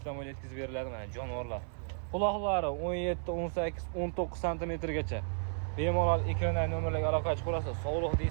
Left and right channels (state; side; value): silent; left; 55 dB below the other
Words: bo'ylab yetkazib beriladi mana jonivorlar. Quloqlari 17, 18, 19 santimetrgacha. Bemalol ekrandagi nomerlarga aloqa chiqarasiz. Sog'liq